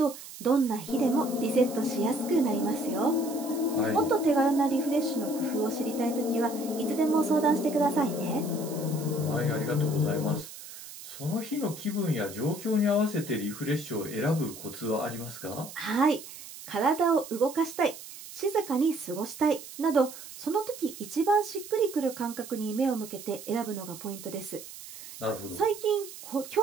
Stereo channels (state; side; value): noise; right; hiss, 14 dB below the sound